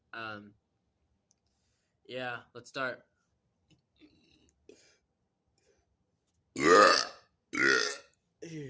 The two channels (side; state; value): both; identical; correlation 1.00